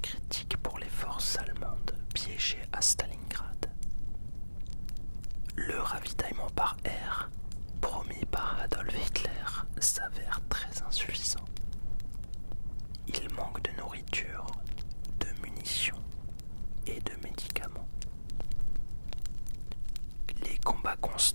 critique pour les forces allemandes piégées à Stalingrad. Le ravitaillement par air, promis par Adolf Hitler, s'avère très insuffisant. Il manque de nourriture, de munitions et de médicaments. Les combats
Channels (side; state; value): both; inverted; correlation -1.00